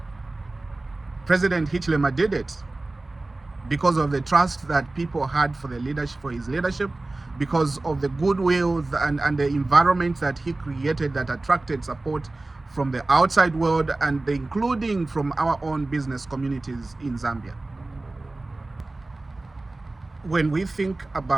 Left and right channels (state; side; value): quieter; left; 3.0 dB